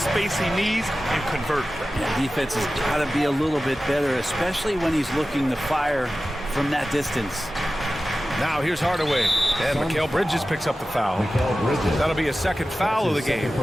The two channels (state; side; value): normal; both; correlation 0.95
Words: he needs and convert. Yeah, defense has got to be a little bit better, especially when he's looking to fire from that distance. Now here's Hardaway. And Mikal Bridges picks up the foul. That'll be a second foul of the game.